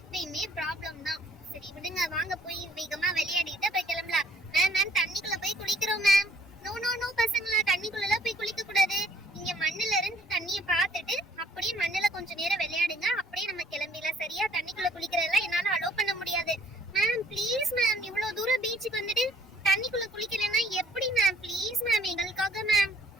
ப்ராப்ளம் தான். சரி விடுங்க, வாங்க போய் வேகமா விளையாடிட்டு போய் கிளம்பலாம். மேம் மேம் தண்ணிக்குள்ள போய் குளிக்கிறோம் மேம். நோ நோ நோ பசங்களா, தண்ணிக்குள்ள போய் குளிக்க கூடாது. இங்க மண்ணுல இருந்து தண்ணிய பார்த்துட்டு அப்படியே மண்ணுல கொஞ்ச நேரம் விளையாடுங்க, அப்படியே நம்ம கிளம்பிடலாம். சரியா? தண்ணிக்குள்ள குளிக்கிறதெல்லாம் என்னால அலோவ் பண்ண முடியாது. மேம் ப்ளீஸ் மேம், இவ்வளவு தூரம் பீச்சுக்கு வந்துட்டு தண்ணிக்குள்ள குளிக்கலன்னா எப்படி மேம்? ப்ளீஸ் மேம் எங்களுக்காக மேம்.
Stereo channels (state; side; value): normal; both; correlation 0.60